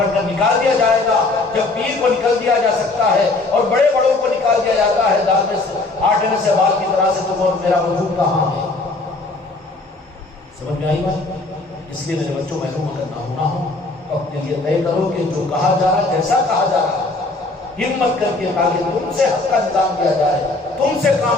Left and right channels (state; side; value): quieter; right; 3.2 dB